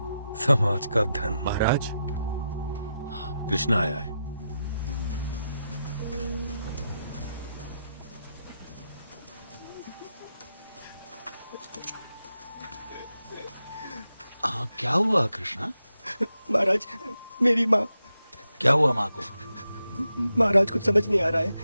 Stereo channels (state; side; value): inverted; both; correlation -0.87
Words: समाज का धन। महाराज, कृष्णा आया है। क्या हुआ कृष्णा? महाराज, मेरी माँ। क्या हुआ माँ को? महाराज कुछ समझ नहीं आ रहा है।